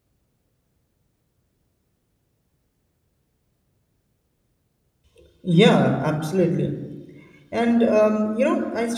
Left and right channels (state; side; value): identical; both; correlation 1.00